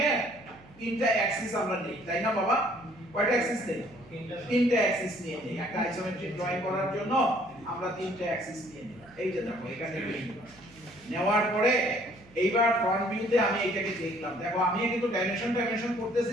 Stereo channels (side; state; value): right; noise; hum, 24 dB below the sound